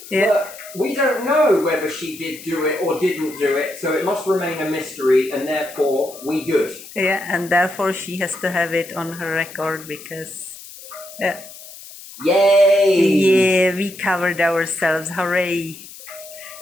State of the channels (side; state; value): left; noise; hiss, 16 dB below the sound